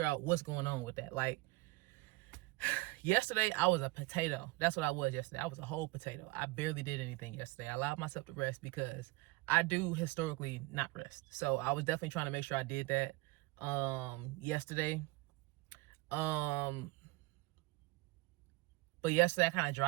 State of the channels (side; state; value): left; quieter; 22.8 dB